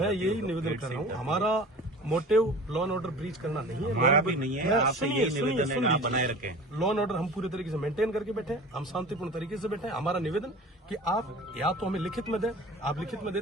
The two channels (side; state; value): both; normal; correlation 0.39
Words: यही निवेदन कर रहा हूँ, हमारा motive law and order breach करना नहीं है, हमारा भी नहीं है, आपसे यही निवेदन है आप बनाए रखें। लॉ एंड ऑर्डर हम पूरे तरीके से मेंटेन करके बैठे हैं, हम शांतिपूर्ण तरीके से बैठे हैं। हमारा निवेदन कि आप या तो हमें लिखित में दें, आप लिखित में